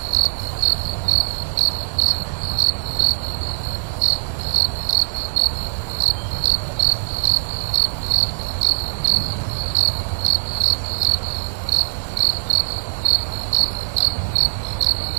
আমাকে বলল, তা রাত্রিবেলা এভাবে বেরিয়ে এলে চোর ডাকাতের বা গুন্ডাদের ভয় নেই? আমি বললাম, আপনাকে দেখেই বেরোলাম, যদিও আপনাকে দেখে আমার কোনোভাবেই চোর ডাকাত বলে মনে হচ্ছে। এই একটু হেসে নিল।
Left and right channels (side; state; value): left; silent; digital silence